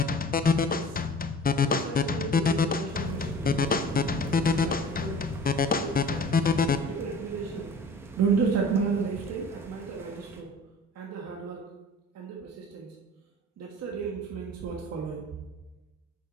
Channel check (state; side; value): normal; both; correlation 0.43